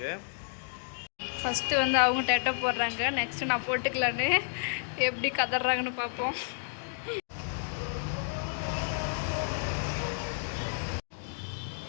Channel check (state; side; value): silent; right; digital silence